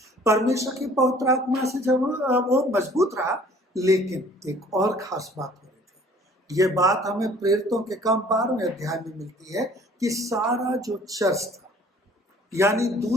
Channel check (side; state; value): both; normal; correlation 0.53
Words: परमेश्वर की पवित्र आत्मा से जब वो मजबूत रहा, लेकिन एक और खास बात हो रही थी। ये बात हमें प्रेरितों के काम 12वें अध्याय में मिलती है कि सारा जो चर्च था, यानी